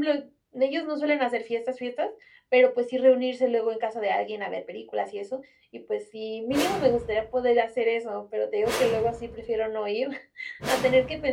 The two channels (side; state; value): both; identical; correlation 1.00